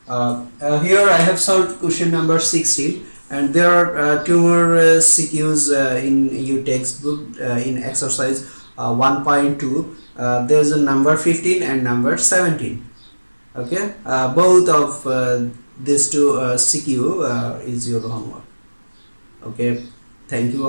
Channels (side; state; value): both; inverted; correlation -1.00